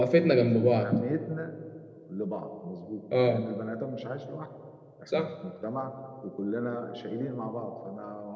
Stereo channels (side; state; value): both; identical; correlation 1.00